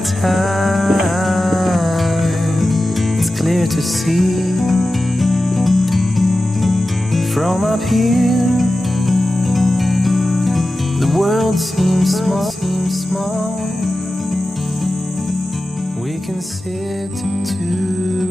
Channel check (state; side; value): normal; both; correlation 0.93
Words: time. It's clear to see from up here. The world seems small. We can sit together.